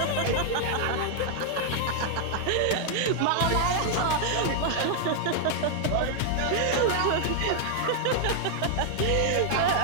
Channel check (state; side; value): different; both; correlation 0.00